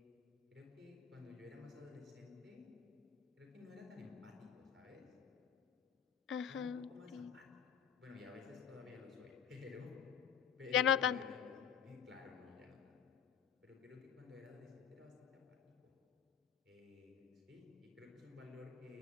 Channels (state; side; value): quieter; right; 8.4 dB